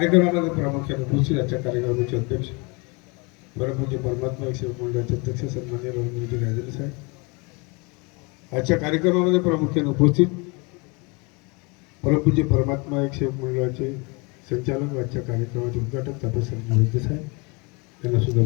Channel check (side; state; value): right; quieter; 29.5 dB